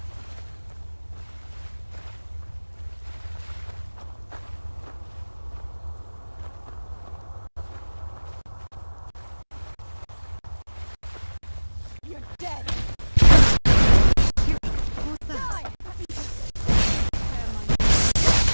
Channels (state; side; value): inverted; both; correlation -1.00